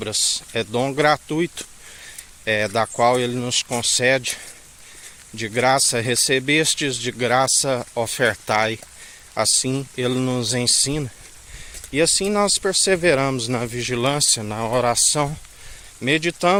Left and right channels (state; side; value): identical; both; correlation 1.00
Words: É dom gratuito, da qual Ele nos concede. De graça recebestes, de graça ofertai. Assim Ele nos ensina. E assim nós perseveramos na vigilância, na oração,